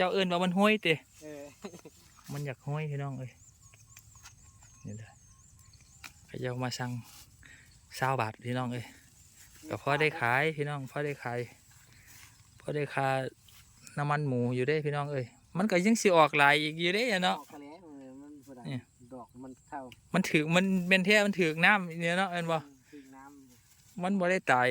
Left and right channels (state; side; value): identical; both; correlation 1.00